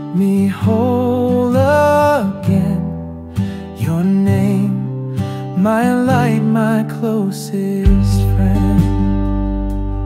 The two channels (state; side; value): identical; both; correlation 1.00